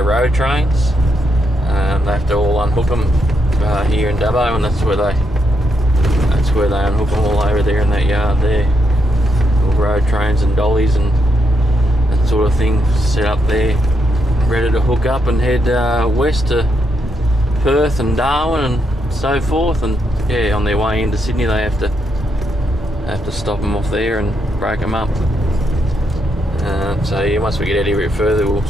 road trains. They have to all unhook them here in Dubbo, and that's where they unhook them all over there in that yard there. All road trains and dollies and that sort of thing set up there, ready to hook up and head west to Perth and Darwin and so forth. And yeah, on their way into Sydney they have to stop them off there and break them up. So yeah, once we get out here a bit further, we'll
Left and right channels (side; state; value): both; normal; correlation 0.79